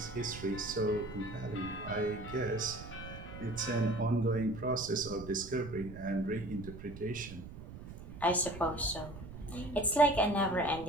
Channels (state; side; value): noise; right; rumble, 12 dB below the sound